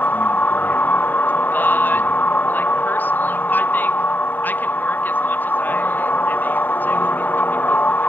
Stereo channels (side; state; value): right; late; 0.090 ms